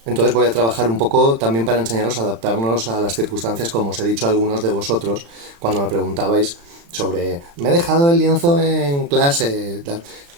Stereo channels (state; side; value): late; left; 35 ms